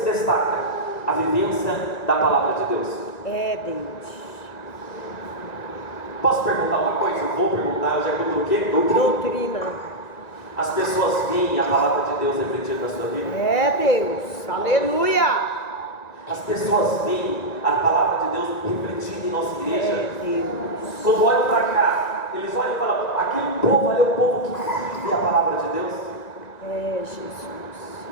destaca, a vivência da palavra de Deus. É, Deus. Posso perguntar uma coisa? Eu vou perguntar, de acordo com o quê? Doutrina. Doutrina. As pessoas veem a palavra de Deus refletida na sua vida? É, Deus. Aleluia. As pessoas veem a palavra de Deus refletida em nossa igreja? É, Deus. Quando olham para cá, eles olham e falam, aquele povo ali é o povo que vive a palavra de Deus. É, Jesus.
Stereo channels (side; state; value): right; late; 1.9 ms